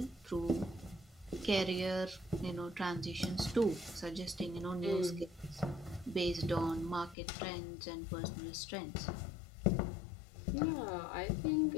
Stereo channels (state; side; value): drops out; right; at 7.2 s